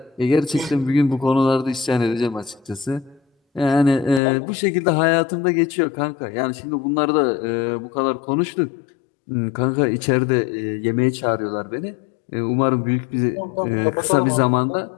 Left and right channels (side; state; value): right; drops out; at 4.2 s